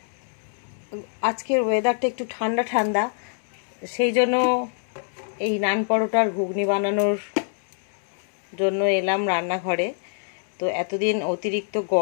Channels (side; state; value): right; silent; 62 dB below the other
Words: আজকের ওয়েদারটা একটু ঠান্ডা ঠান্ডা, সেই জন্য এই নান পরোটার ঘুগনি বানানোর জন্য এলাম রান্নাঘরে। তো এতদিন অতিরিক্ত